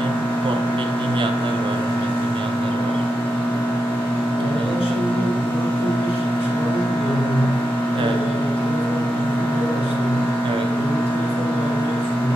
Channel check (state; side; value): normal; both; correlation 0.88